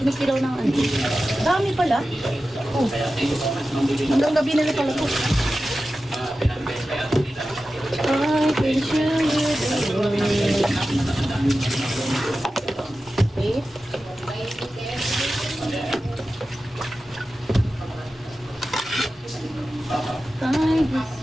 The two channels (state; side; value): normal; both; correlation 0.94